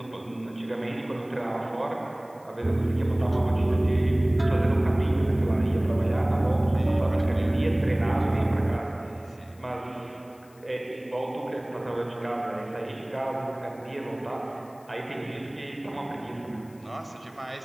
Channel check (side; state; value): left; noise; hiss, 29 dB below the sound